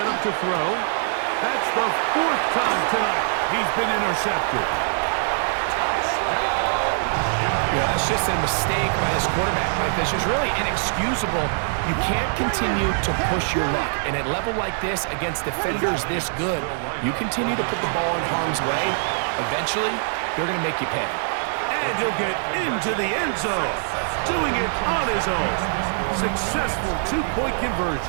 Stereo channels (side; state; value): left; silent; 62 dB below the other